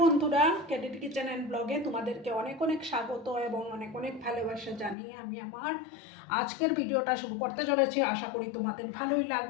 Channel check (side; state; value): right; drops out; at 5.0 s